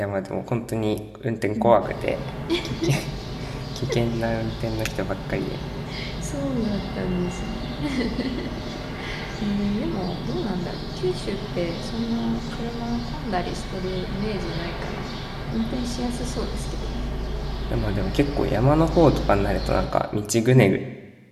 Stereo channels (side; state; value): both; identical; correlation 1.00